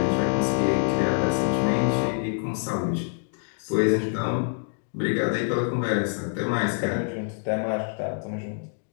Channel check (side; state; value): right; silent; digital silence